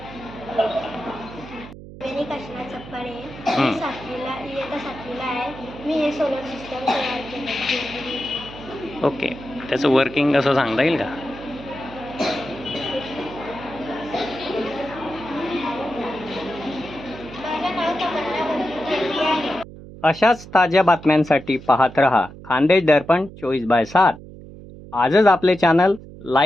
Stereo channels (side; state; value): right; noise; hum, 16 dB below the sound